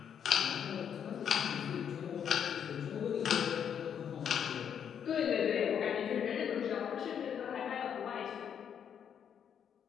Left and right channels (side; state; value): right; quieter; 8.3 dB